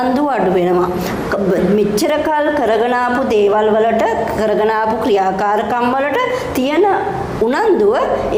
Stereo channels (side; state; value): both; identical; correlation 1.00